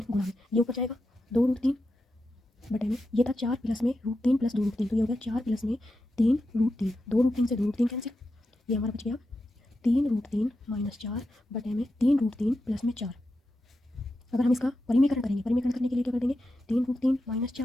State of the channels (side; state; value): both; normal; correlation 0.89